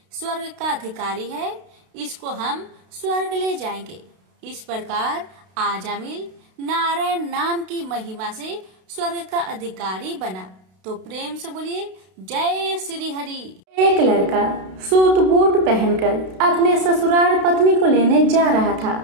स्वर्ग का अधिकारी है, इसको हम स्वर्ग ले जाएंगे। इस प्रकार आजामिल नारायण नाम की महिमा से स्वर्ग का अधिकारी बना। तो प्रेम से बोलिए जय श्री हरि। एक लड़का सूट बूट पहनकर अपने ससुराल पत्नी को लेने जा रहा था।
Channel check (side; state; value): left; late; 32 ms